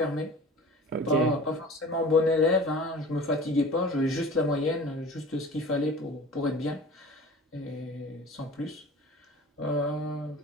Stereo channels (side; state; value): both; normal; correlation 0.41